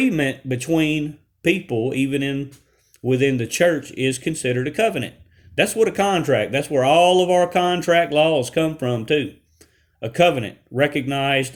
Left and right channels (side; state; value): both; identical; correlation 1.00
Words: between people, even within the church, is considered a covenant. That's what a contract. That's where all of our contract laws come from too. A covenant,